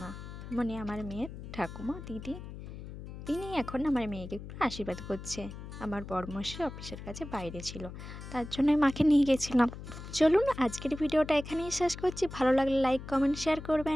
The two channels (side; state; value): left; noise; hum, 11 dB below the sound